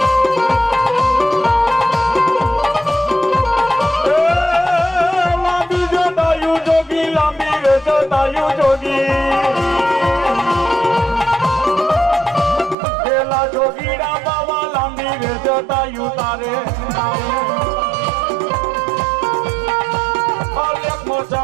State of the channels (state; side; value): drops out; left; at 12.8 s